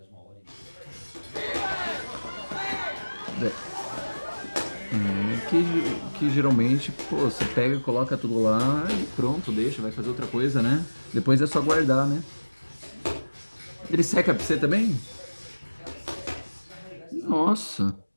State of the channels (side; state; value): both; inverted; correlation -1.00